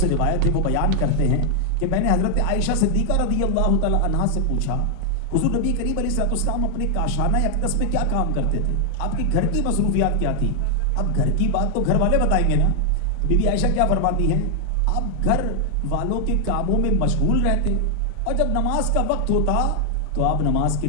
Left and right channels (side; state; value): both; different; correlation 0.00